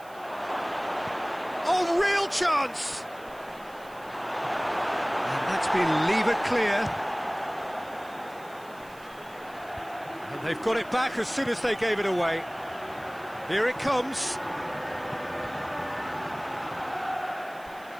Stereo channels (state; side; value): noise; right; hiss, 24 dB below the sound